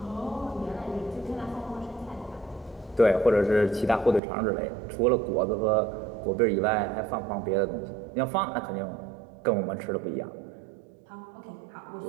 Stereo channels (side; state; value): left; drops out; at 4.2 s